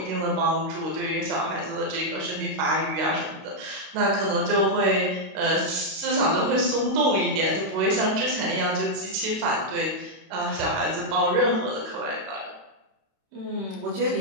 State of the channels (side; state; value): left; late; 32 ms